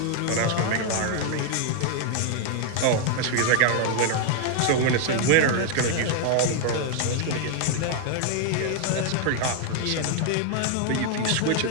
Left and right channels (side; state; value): both; different; correlation 0.00